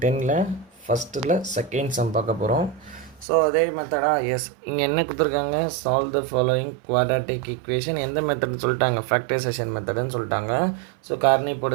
ஃபஸ்ட்டில் செகண்ட் சம் பார்க்க போகிறோம். ஸோ அதே மெத்தடாக எஸ் இங்கே என்ன கொடுத்துருக்காங்க, solve the following quadratic equation. எந்த மெத்தட்னு சொல்லிட்டாங்க, ஃபேக்டரைசேஷன் மெத்தடுன்னு சொல்லிட்டாங்க. ஸோ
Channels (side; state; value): left; drops out; at 3.2 s